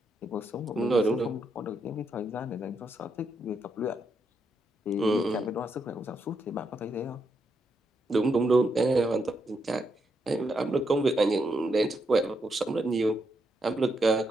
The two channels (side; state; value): both; normal; correlation 0.80